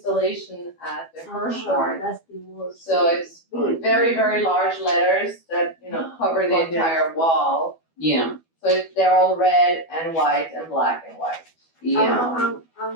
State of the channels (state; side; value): late; right; 12 ms